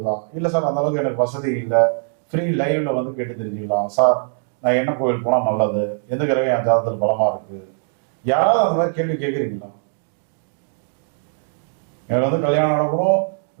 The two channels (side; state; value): left; silent; digital silence